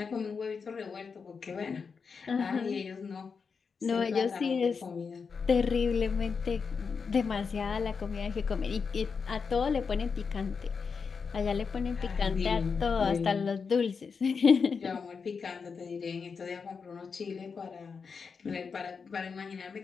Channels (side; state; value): right; quieter; 5.5 dB